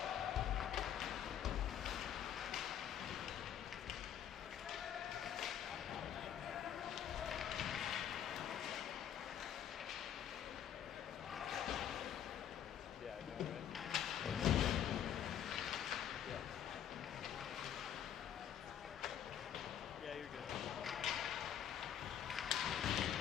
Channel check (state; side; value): quieter; right; 9.7 dB